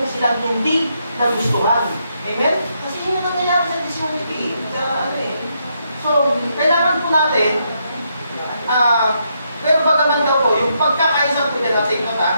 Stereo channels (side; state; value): both; inverted; correlation -0.78